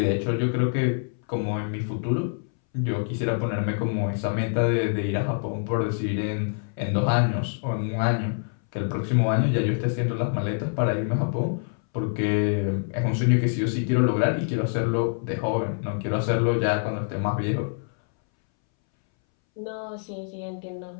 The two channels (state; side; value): silent; right; 61 dB below the other